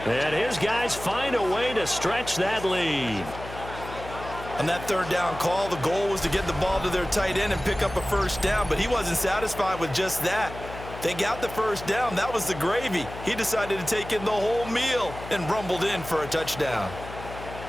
And his guys find a way to stretch that lead. On that 3rd down call, the goal was to get the ball to their tight end and pick up a first down, but he wasn't satisfied with just that. They got the first down. That was the gravy. He decided to take in the whole meal and rumbled in for a touchdown.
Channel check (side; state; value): left; noise; hum, 12 dB below the sound